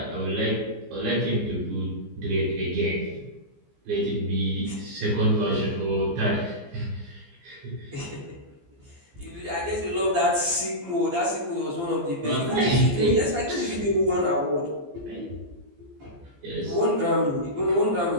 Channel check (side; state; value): left; late; 15 ms